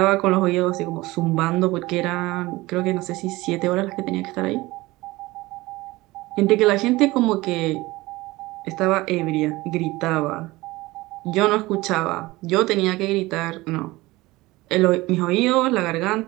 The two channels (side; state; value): left; quieter; 20.1 dB